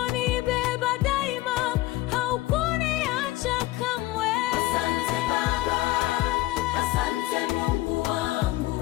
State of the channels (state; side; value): quieter; right; 17.9 dB